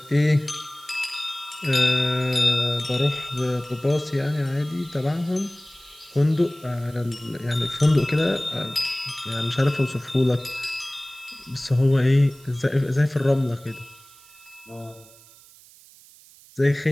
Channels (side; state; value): right; noise; hiss, 24 dB below the sound